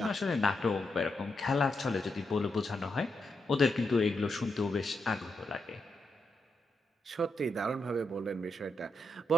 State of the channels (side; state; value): both; normal; correlation 0.84